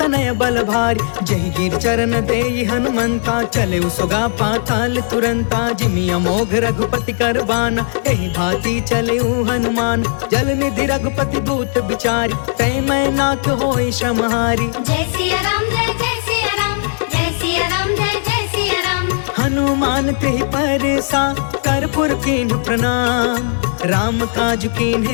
बल भारी। जही गिर चरण देई हनुमंता, चले सुगा पाताल तुरंता। जिमि अमोघ रघुपति कर बाना, एहि भांति चले हनुमान। जल निधि रघुपति दूत बिचारी, तै मैं नाथ होई श्रमहारी। जय सिया राम जय जय सिया राम, जय सिया राम जय जय सिया राम। हनुमान तेहि परसा, कर्पूर कीन्ह प्रणाम। राम काज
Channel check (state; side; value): silent; right; digital silence